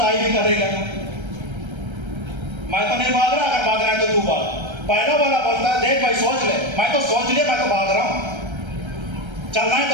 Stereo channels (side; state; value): left; late; 1.3 ms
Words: भी करेगा। मैं तो नहीं भाग रहा, अगर भागना है तो तू भाग। पहला वाला बोलता है, देख भाई सोच ले, मैं तो सोच लिया, मैं तो भाग रहा हूं, चलना है